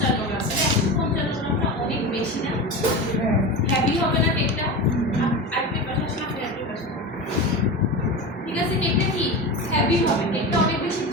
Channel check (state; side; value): normal; both; correlation 0.25